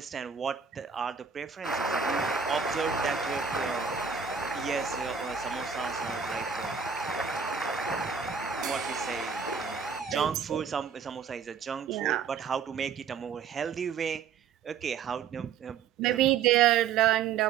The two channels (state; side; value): quieter; left; 6.7 dB